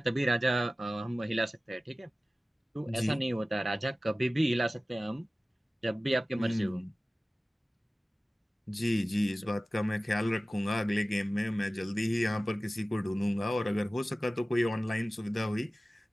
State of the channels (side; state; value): both; normal; correlation 0.97